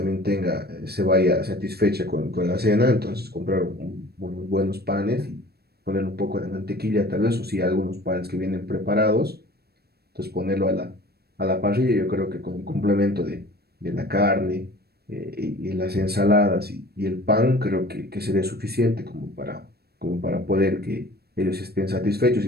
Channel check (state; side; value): late; left; 0.46 ms